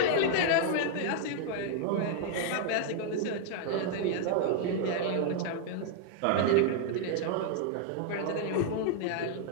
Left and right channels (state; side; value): different; both; correlation 0.00